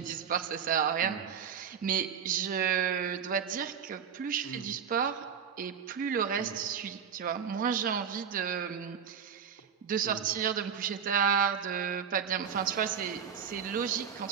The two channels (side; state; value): left; quieter; 7.5 dB